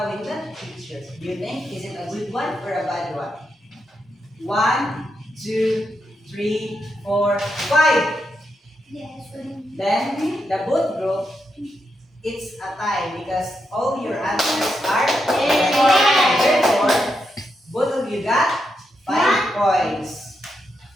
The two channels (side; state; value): both; normal; correlation 0.83